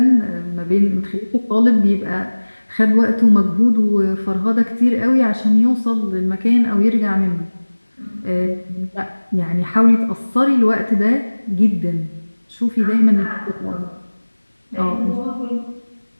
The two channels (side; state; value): both; inverted; correlation -1.00